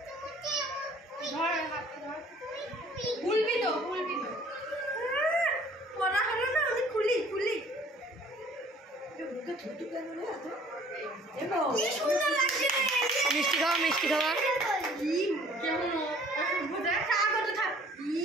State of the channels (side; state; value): both; normal; correlation 0.54